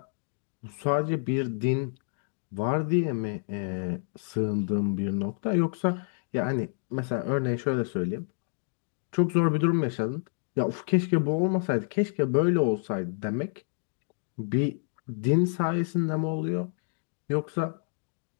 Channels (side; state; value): right; silent; digital silence